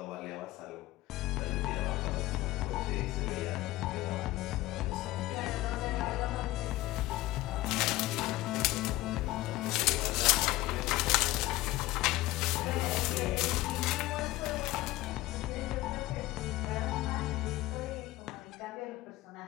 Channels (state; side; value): quieter; right; 17.8 dB